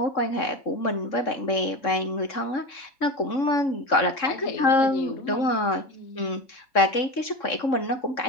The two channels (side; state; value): right; late; 3.7 ms